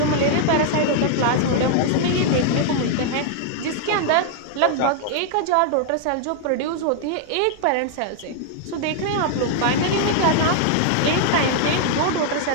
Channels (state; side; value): different; both; correlation 0.00